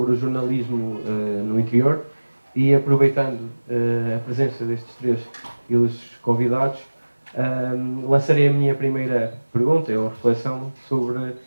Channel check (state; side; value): inverted; both; correlation -1.00